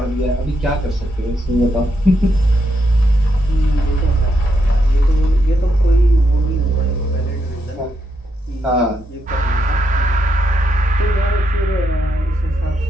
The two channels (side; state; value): both; normal; correlation 0.80